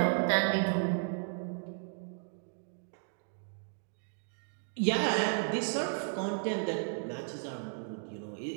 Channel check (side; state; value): left; silent; 55 dB below the other